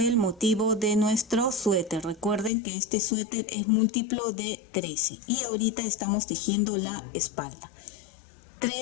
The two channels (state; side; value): drops out; right; at 2.5 s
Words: motivo de nuestro suéter. Recuerden que este suéter es múltiplo de 13 y ahorita estamos tejiendo la espalda.